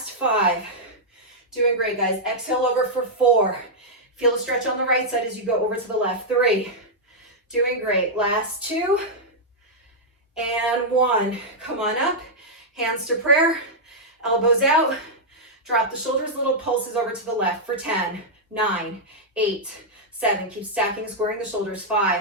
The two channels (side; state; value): both; normal; correlation -0.06